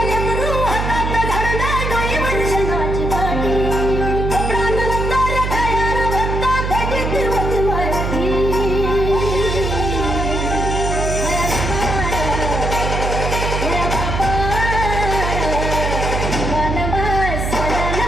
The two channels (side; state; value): right; noise; hum, 1 dB below the sound